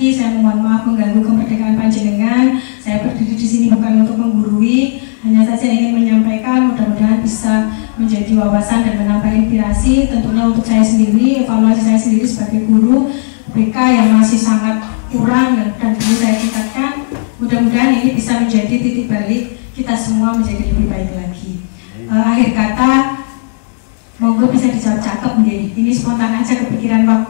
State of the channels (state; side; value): silent; right; digital silence